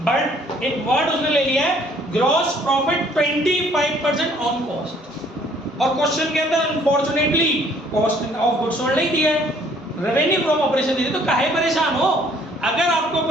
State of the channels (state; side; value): normal; both; correlation 0.60